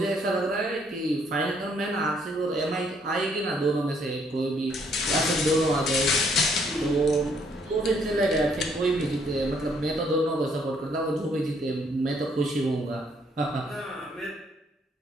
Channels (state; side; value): normal; both; correlation 0.67